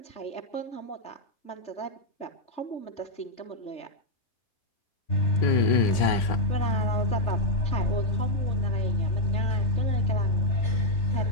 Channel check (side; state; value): right; late; 3.3 ms